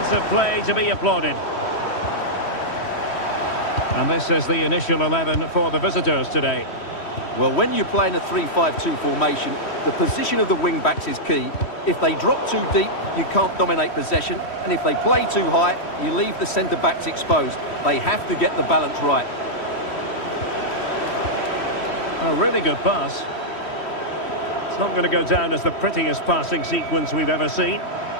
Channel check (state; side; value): late; right; 3.1 ms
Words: play to be applauded. And this is the initial 11 for the visitors today. Well, when you play in a 3-5-2 formation, the position of the wing-backs is key. If they drop too deep, you can't dominate possession. And if they play too high, you leave the centre-backs exposed. They have to get the balance right. A really good pass. It's not going to go down as the prettiest passing sequence we've ever seen.